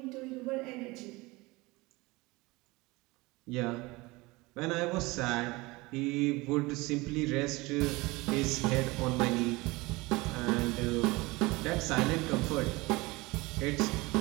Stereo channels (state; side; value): quieter; left; 22.8 dB